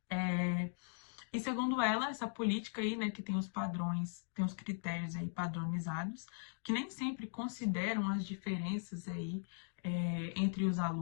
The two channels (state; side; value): silent; right; digital silence